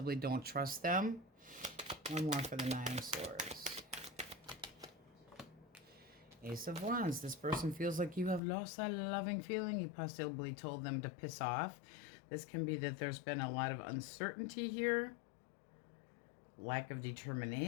don't trust them. One more for the Nine of Swords. Ace of Wands. This person feels like you have lost that loving feeling. You possibly told them to piss off. This can be that there's been a lot of uncertainty here. Lack of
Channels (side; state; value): right; drops out; at 8.4 s